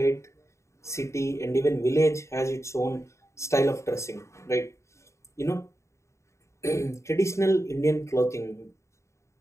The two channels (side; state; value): right; late; 0.14 ms